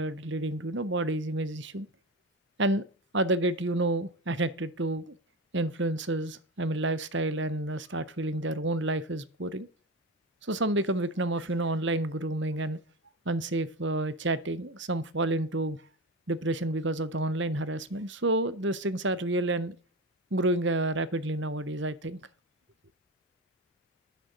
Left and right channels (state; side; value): normal; both; correlation 0.22